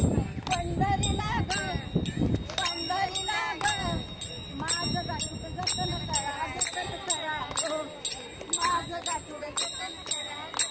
पंढरीला ग पंढरीला ग माझं गाठूड जतन करा ग माझं गाठूड जतन करा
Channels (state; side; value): identical; both; correlation 1.00